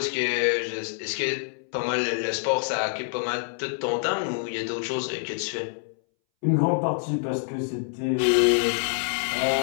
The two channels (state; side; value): silent; right; 61 dB below the other